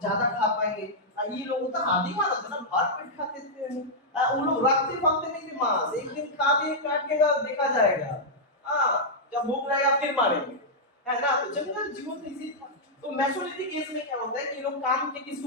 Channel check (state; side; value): normal; both; correlation -0.07